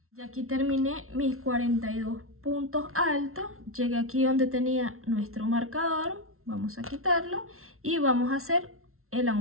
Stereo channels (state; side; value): late; left; 0.62 ms